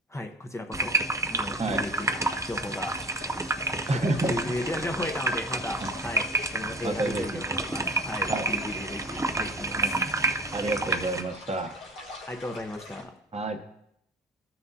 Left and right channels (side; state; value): both; normal; correlation 0.37